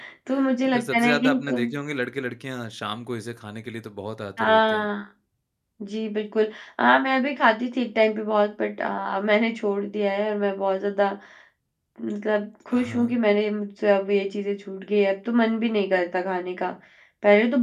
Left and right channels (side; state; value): both; identical; correlation 1.00